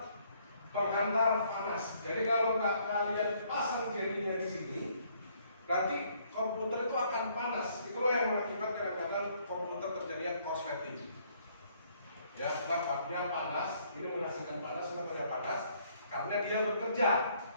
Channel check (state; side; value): inverted; both; correlation -0.66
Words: penghantar panas. Jadi kalau nggak kalian pasang jelly-nya di sini, nanti komputer itu akan panas. Itulah yang mengakibatkan kadang-kadang komputer terjadinya korsleting. Ya, sebabnya panas. Ini menghasilkan panas. Kenapa dia panas? Karena dia bekerja.